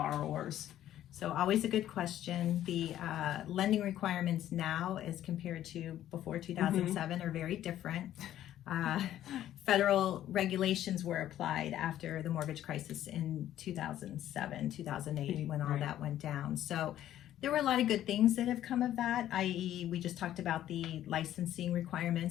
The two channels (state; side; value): quieter; right; 12.2 dB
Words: So always a good question. The lending requirements now as compared to before 2007 are very different. Federal regulations were applied after the mortgage crisis in 2007, 2008, when all that went down. So there were a lot of good things that have come of that, i.e. we just talked about the licensing